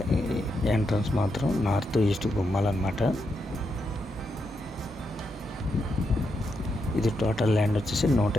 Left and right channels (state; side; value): normal; both; correlation 0.83